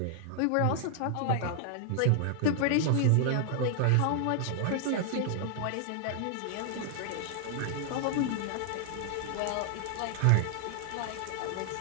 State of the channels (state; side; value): different; both; correlation 0.00